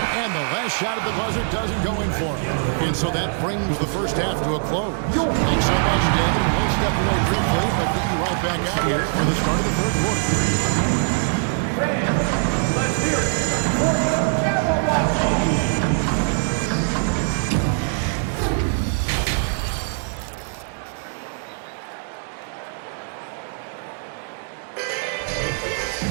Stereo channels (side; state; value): left; silent; 60 dB below the other